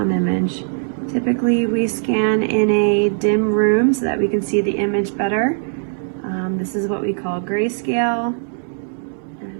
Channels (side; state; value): left; silent; digital silence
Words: image. Typically we scan in a dim room so that we can see the image better. This is what we call grayscale,